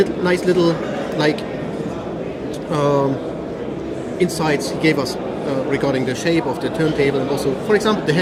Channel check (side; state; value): both; identical; correlation 1.00